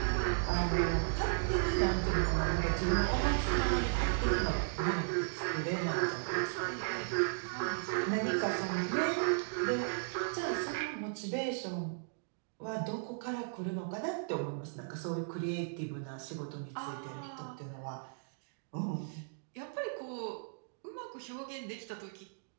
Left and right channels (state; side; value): silent; left; digital silence